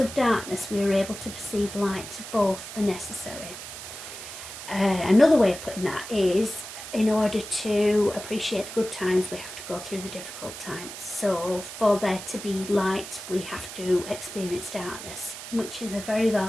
darkness, we are able to perceive light. Both are necessary. Another way of putting that is, in order to appreciate the good times, we have to go through the difficult times. So for there to be light, we have to experience darkness, which is a very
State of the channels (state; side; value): noise; right; hiss, 11 dB below the sound